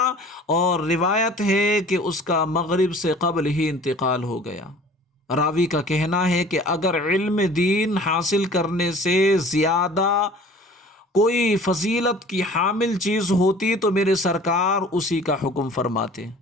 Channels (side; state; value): both; normal; correlation 0.47